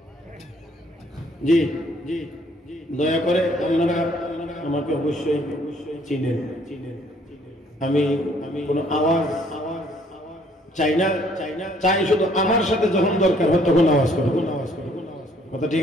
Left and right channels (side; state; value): both; normal; correlation 0.63